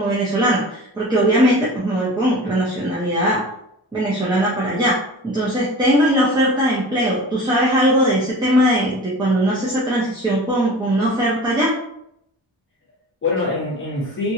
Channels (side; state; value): both; normal; correlation 0.38